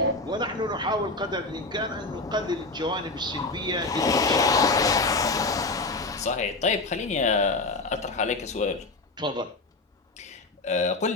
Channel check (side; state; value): right; quieter; 3.3 dB